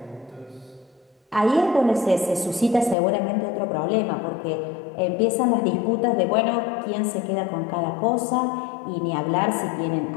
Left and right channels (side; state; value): right; drops out; at 3.0 s